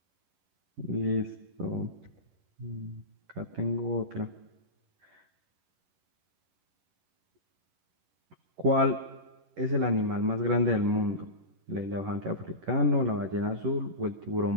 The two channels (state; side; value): late; left; 11 ms